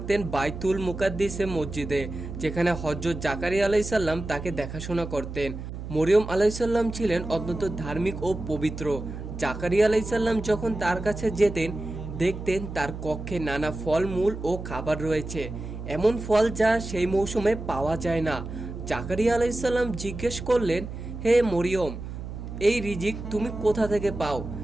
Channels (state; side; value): noise; right; hum, 9 dB below the sound